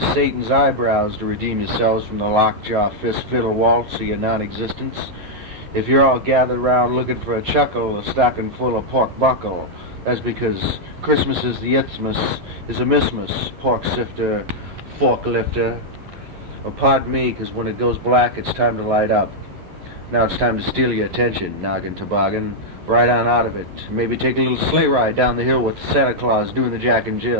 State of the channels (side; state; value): left; late; 11 ms